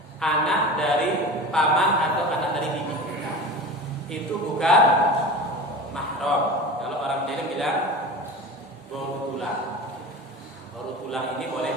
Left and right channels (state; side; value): normal; both; correlation 0.33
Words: anak dari paman atau anak dari bibi kita. Itu bukan mahram. Kalau orang Jawa bilang baru tulang. Baru tulang ini boleh